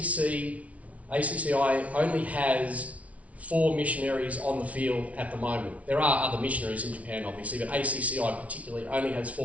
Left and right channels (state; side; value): late; left; 0.066 ms